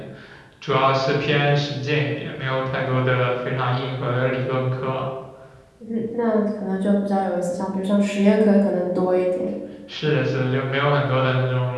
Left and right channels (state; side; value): identical; both; correlation 1.00